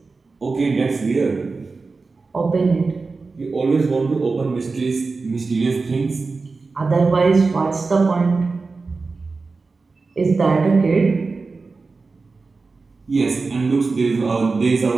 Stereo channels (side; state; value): left; quieter; 4.1 dB